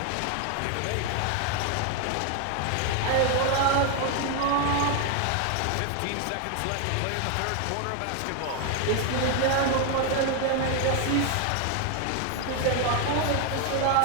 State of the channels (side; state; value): both; different; correlation 0.01